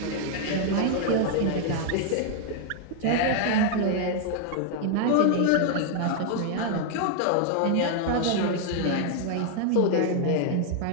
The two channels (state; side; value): different; both; correlation 0.00